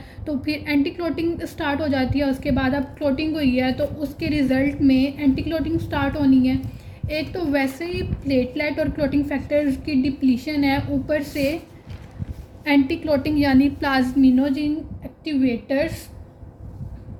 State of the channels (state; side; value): identical; both; correlation 1.00